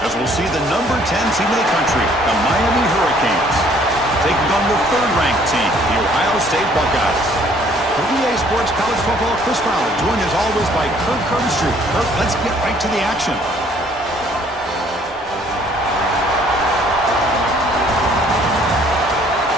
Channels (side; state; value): both; normal; correlation 0.60